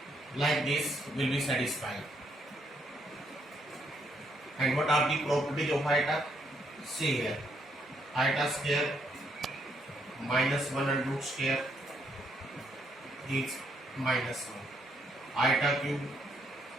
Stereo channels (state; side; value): normal; both; correlation 0.74